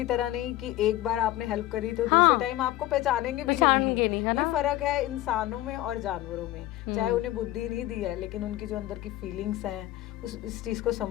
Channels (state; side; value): quieter; right; 15.6 dB